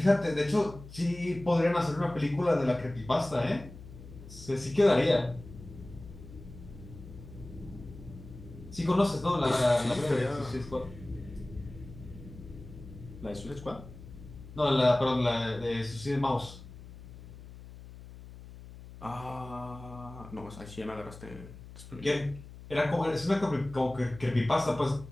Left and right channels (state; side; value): noise; left; hum, 16 dB below the sound